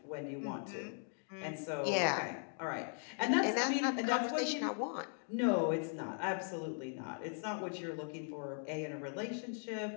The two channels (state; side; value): silent; right; 52 dB below the other